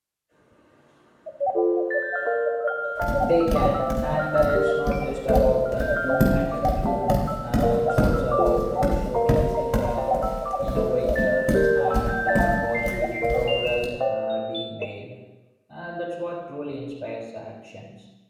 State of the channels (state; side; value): identical; both; correlation 1.00